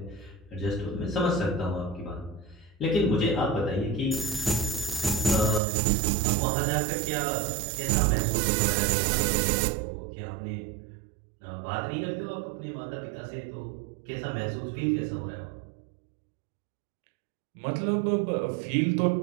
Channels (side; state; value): left; drops out; at 5.6 s